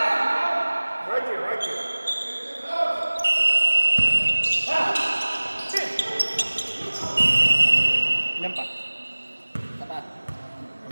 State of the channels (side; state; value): both; inverted; correlation -1.00